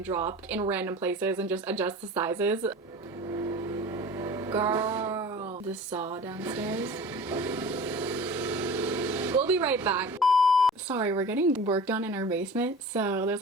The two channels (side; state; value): both; normal; correlation 0.39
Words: drop in random places and just adjust the sizes. Girl, the saw downstairs. We'll be right back. Sorry, we're getting work done in our basement, so there's